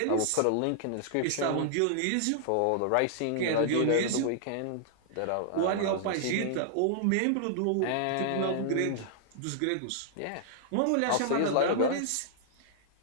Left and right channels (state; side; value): different; both; correlation -0.01